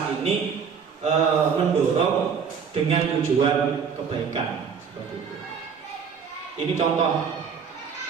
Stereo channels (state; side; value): quieter; left; 6.5 dB